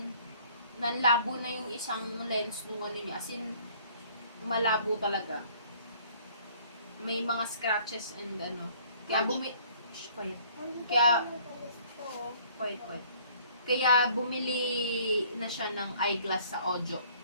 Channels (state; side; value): inverted; both; correlation -0.58